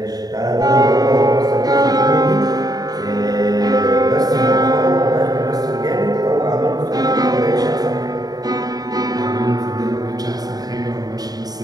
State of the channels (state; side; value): late; left; 0.18 ms